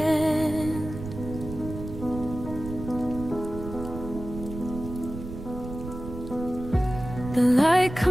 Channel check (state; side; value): noise; right; rumble, 10 dB below the sound